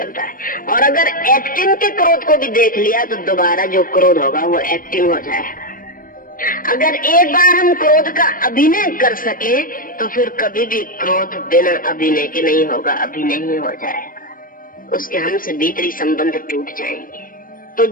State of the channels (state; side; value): late; right; 0.41 ms